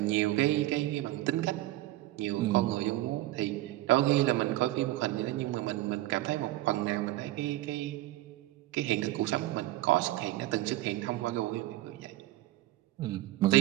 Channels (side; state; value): left; quieter; 16.3 dB